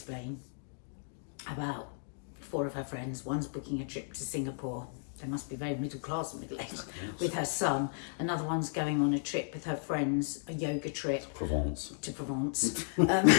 about 4 of her friends. One's booking a trip to Singapore. They must be very middle class and middle-aged with her son. Another one's going on a trip with her friends, a yoga trip. To Provence.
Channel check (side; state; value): right; silent; digital silence